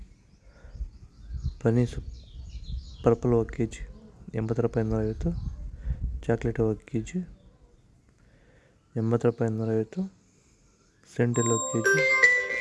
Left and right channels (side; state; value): both; identical; correlation 1.00